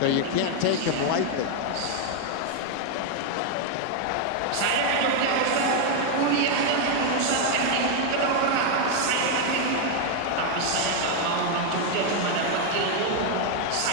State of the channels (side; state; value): both; different; correlation 0.01